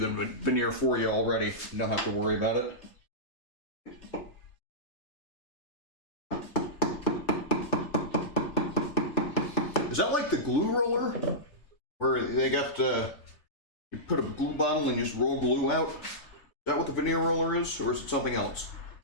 veneer for you already. You don't have to worry about it. Is that like the glue roller? Where they got you put a glue bottle and you just roll glue out? Is that what the veneer roller is? Or is it something else?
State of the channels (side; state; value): right; late; 3.3 ms